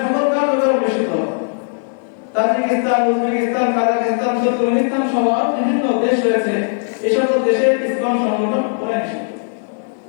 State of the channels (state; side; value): silent; right; digital silence